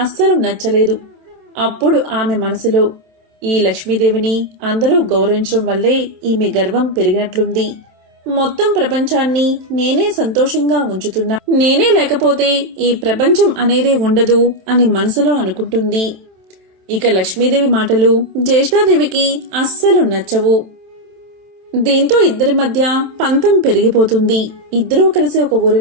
అస్సలు నచ్చలేదు. అప్పుడు ఆమె మనసులో, ఈ లక్ష్మీదేవిని అందరూ గౌరవించడం వల్లే ఈమె గర్వం పెరిగినట్లుంది. మొత్తం ప్రపంచాన్ని నేనే సంతోషంగా ఉంచుతున్నా, నేనే లేకపోతే ఈ ప్రపంచం అనేదే ఉండదు అని మనసులో అనుకుంటుంది. ఇక లక్ష్మీదేవి మాటలు జ్యేష్ఠాదేవికి అస్సలు నచ్చవు. దీంతో ఇద్దరి మధ్య పంతం పెరిగిపోతుంది. ఇద్దరూ కలిసి ఒక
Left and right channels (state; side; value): late; left; 27 ms